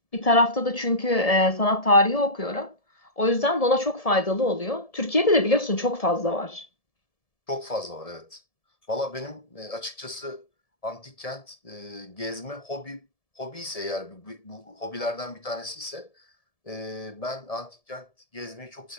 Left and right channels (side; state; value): right; late; 1.7 ms